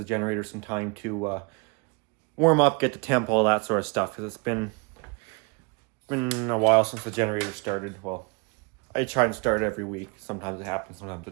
generator some time to warm up, get the temp, all that sort of stuff, because it's been a while since the generator started. Well, I try and start every week. Sometimes it happens, sometimes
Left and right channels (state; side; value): quieter; left; 31.1 dB